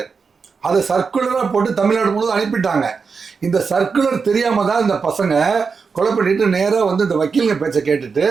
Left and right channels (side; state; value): left; quieter; 5.2 dB